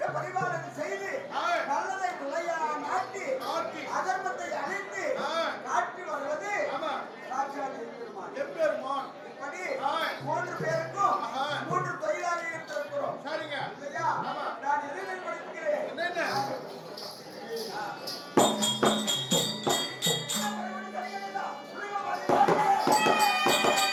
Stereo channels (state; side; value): identical; both; correlation 1.00